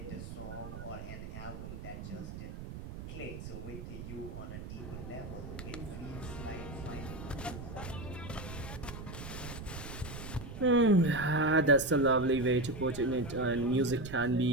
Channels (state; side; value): noise; right; rumble, 10 dB below the sound